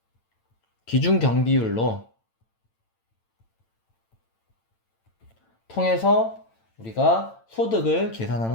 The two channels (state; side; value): late; right; 8.9 ms